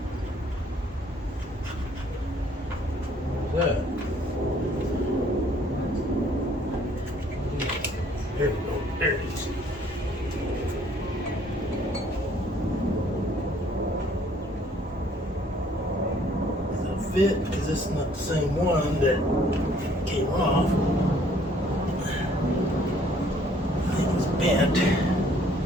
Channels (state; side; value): normal; both; correlation 0.61